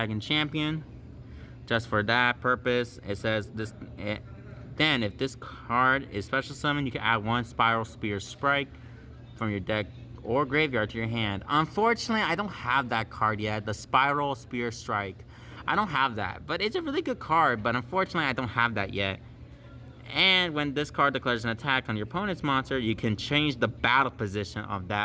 Champion. Just for that purpose, it says this. Then, if this card is special summon, you can add one Spiral Spear Strike from your deck or graveyard to your hand. Unfortunately, I don't have that card yet, the Spiral Spear Strike. I don't have that, but it's a really good card, but unfortunately, I don't have that yet. And when this card declares an attack on your opponent's monster, you can change the battle position of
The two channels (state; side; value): identical; both; correlation 1.00